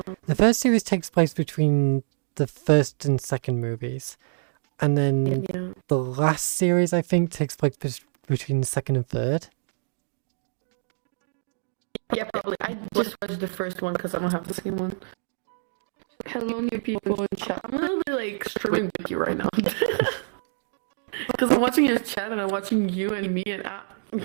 first series takes place between the first and second movies, and then yeah. the last series I think takes place between the second and third. Yeah, probably. I just watched the first one because I don't have the second one. Hello, new people in chat. I'm literally like streaming with you right now. Because I'm watching your chat and I'm watching you and me and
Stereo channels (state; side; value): silent; left; digital silence